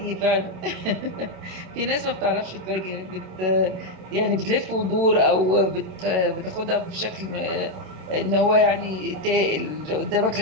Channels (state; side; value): late; left; 27 ms